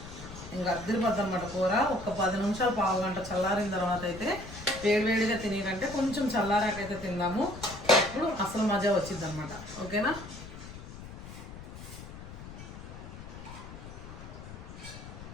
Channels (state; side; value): noise; left; rumble, 13 dB below the sound